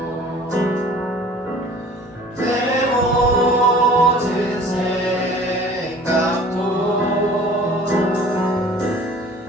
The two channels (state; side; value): normal; both; correlation 0.48